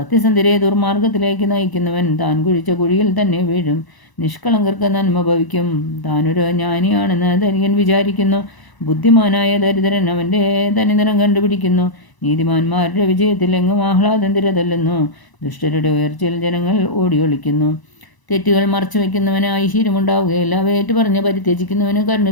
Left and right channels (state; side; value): late; right; 1.0 ms